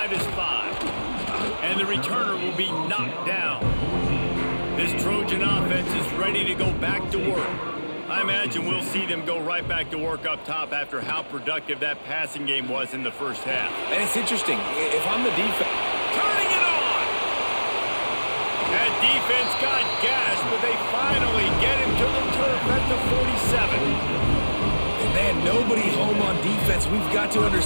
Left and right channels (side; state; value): both; inverted; correlation -1.00